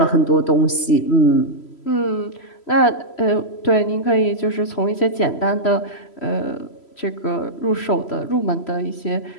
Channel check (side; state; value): right; late; 3.0 ms